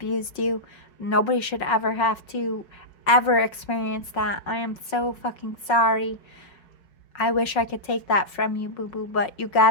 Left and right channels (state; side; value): late; right; 5.4 ms